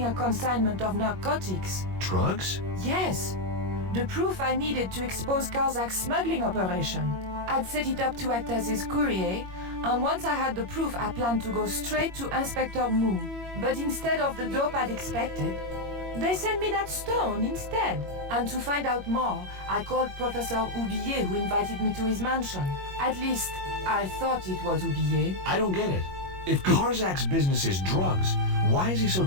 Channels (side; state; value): left; late; 21 ms